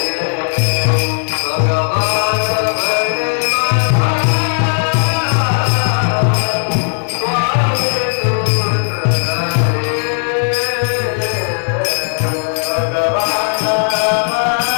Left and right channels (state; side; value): silent; right; digital silence